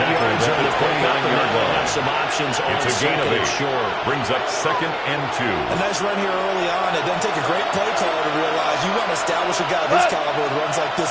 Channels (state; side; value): identical; both; correlation 1.00